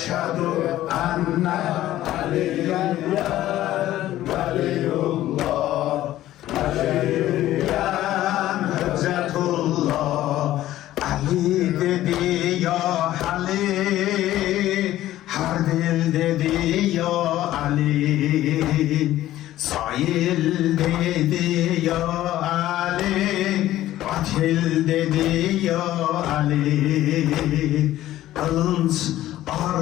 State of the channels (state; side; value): quieter; right; 14.2 dB